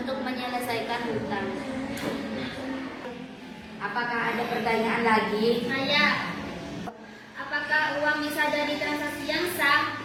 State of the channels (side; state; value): both; identical; correlation 1.00